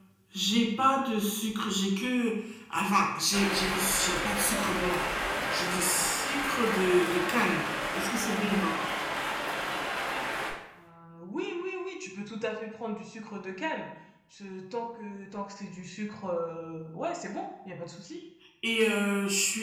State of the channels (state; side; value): identical; both; correlation 1.00